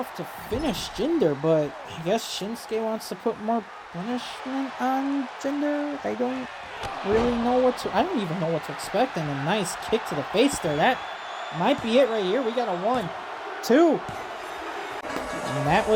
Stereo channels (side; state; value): both; identical; correlation 1.00